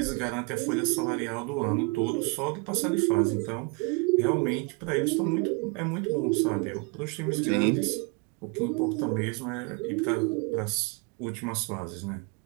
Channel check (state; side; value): quieter; left; 30.8 dB